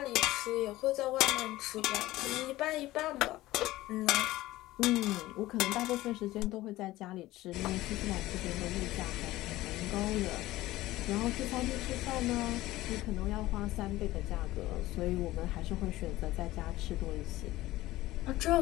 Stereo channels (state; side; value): quieter; right; 17.1 dB